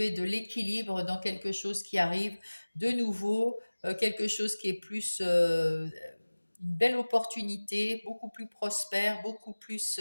de l'équilibre dans quelque chose qui arrive de nouveau, quelque chose qui est plus une belle opportunité, beaucoup plus prospère, beaucoup plus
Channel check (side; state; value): both; inverted; correlation -1.00